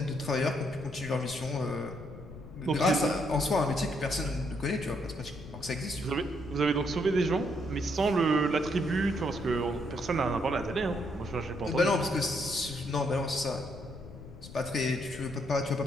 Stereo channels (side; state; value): left; noise; rumble, 15 dB below the sound